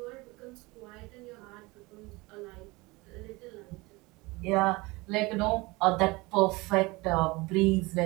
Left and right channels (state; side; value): quieter; left; 23.5 dB